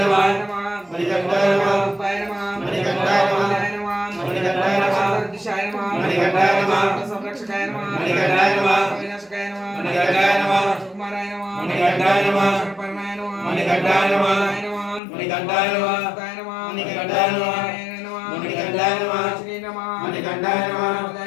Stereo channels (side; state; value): right; drops out; at 15.0 s